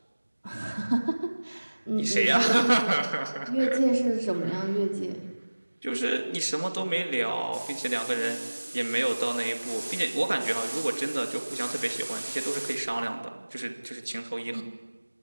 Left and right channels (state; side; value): inverted; both; correlation -1.00